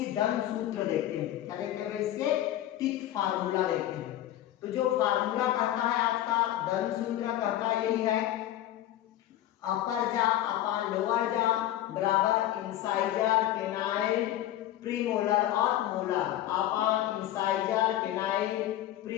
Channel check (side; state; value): right; quieter; 13.1 dB